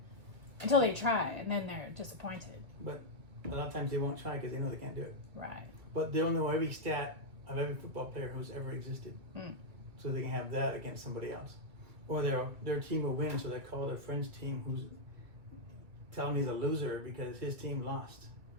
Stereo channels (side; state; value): left; late; 2.0 ms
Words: Until they try, and then they're disappointed. But a lot of times they won't try because they know they can't do it. Right. But they'll know every stat of every football player who's ever existed, so they can have that against somebody else, or their team will win, so they call their friend's team who's tell him he's a loser because his team lost.